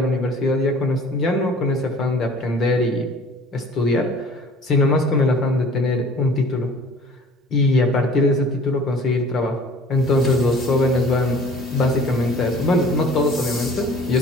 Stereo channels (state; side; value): normal; both; correlation 0.49